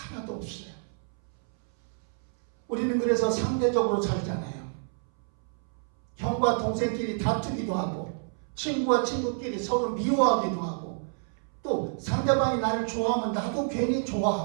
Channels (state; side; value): silent; left; 59 dB below the other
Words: 없어요. 우리는 그래서 상대적으로 살잖아요. 형과 동생끼리 다투기도 하고 친구와 친구끼리 서로 미워하기도 하고 또 상대방이 나를 좋아하면 나도 괜히